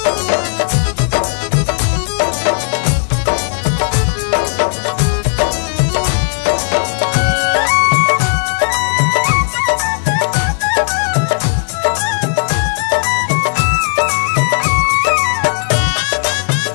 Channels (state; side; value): silent; right; digital silence